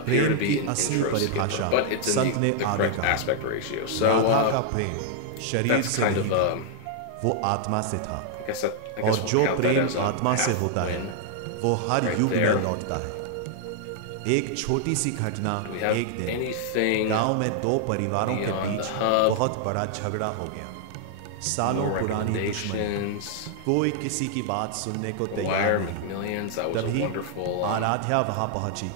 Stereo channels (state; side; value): different; both; correlation 0.00